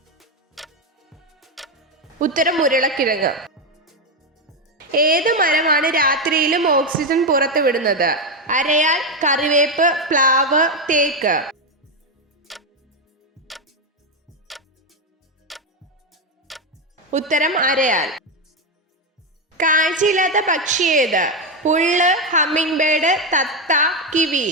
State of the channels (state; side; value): normal; both; correlation 0.08